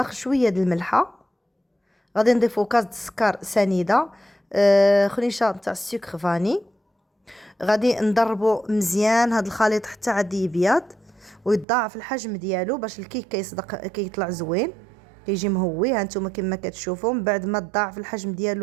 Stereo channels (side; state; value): left; drops out; at 11.7 s